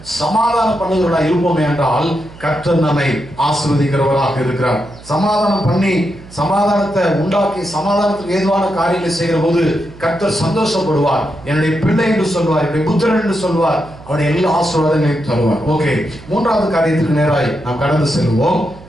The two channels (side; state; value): right; noise; hum, 19 dB below the sound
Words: சமாதானம் பண்ணுகிறவர்களாக இருப்போமே என்றால் கர்த்தர் நம்மை ஆசீர்வதிக்கிறவராக இருக்கிறார். சமாதானம் பண்ணி சமாதானத்தை உண்டாக்கி சமாதானத்துக்கு ஏதுவான காரியங்களை செய்கிற போது கர்த்தர் சந்தோஷப்படுவார். என்னுடைய பிள்ளை என்று சொல்வார், என்னுடைய புத்திரன் என்று சொல்வார், அவருடைய எல்லா ஆசீர்வாதங்களையும் தருவார். ஓகே, மூன்றாவது காரியத்துக்கு நேராய் நாம் கடந்து செல்வோம்.